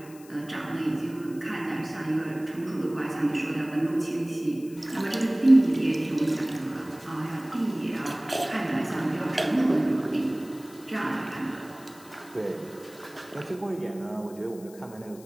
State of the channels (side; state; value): left; noise; hiss, 22 dB below the sound